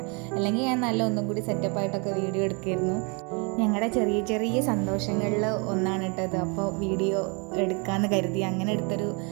അല്ലെങ്കിൽ ഞാൻ ഒന്നും കൂടി സെറ്റപ്പായിട്ടൊക്കെ വീഡിയോ എടുക്കുമായിരുന്നു. ഞങ്ങളുടെ ചെറിയ ചെറിയ സന്തോഷങ്ങളിൽ ഒന്നാണ് കേട്ടത്. അപ്പോൾ വീഡിയോ എടുക്കാമെന്ന് കരുതി അങ്ങനെ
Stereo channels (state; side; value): quieter; left; 32.8 dB